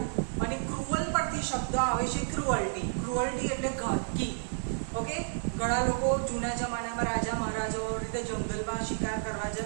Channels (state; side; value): silent; left; digital silence